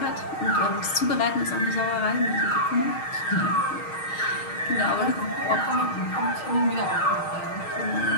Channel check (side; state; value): right; late; 6.4 ms